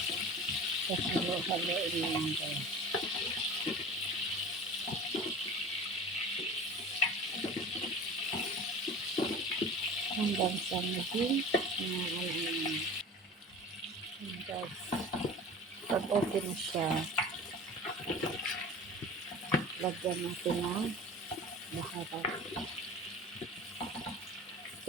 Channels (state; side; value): normal; both; correlation 0.38